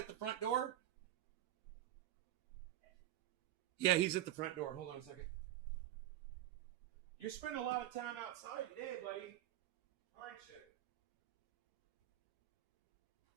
the front door? Yeah, he's at the front door. Hold on a second. You're spending a lot of time outside today, buddy. Aren't you?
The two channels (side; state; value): left; quieter; 13.4 dB